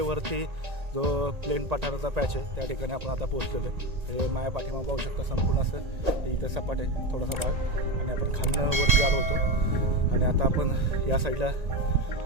वरती. जो प्लेन पठाराचा पॅच आहे त्या ठिकाणी आपण आता पोहोचलेलो आहे. हे माया पाठीमागं पाहू शकता संपूर्ण असं इथं सपाट आहे थोडासा भाग. आणि आपण खालनं वरती आलो होतो. आणि आता आपण या साईडला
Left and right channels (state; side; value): late; left; 1.8 ms